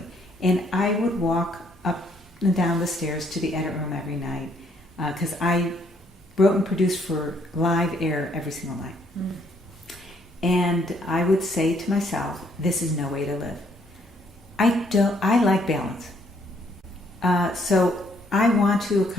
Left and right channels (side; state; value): both; normal; correlation 0.68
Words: And I would walk up and down the stairs to the edit room every night, because I wrote and produced for live air every single night. Mm. And I would say to myself, this is no way to live. I like balance. So I want to